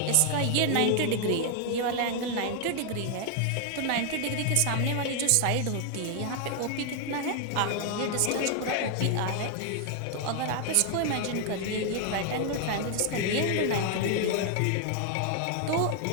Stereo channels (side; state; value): both; different; correlation 0.00